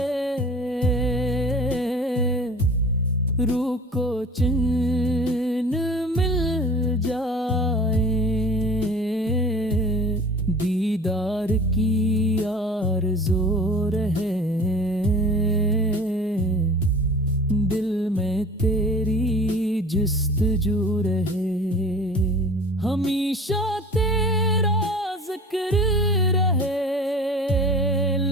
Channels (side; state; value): both; normal; correlation 0.42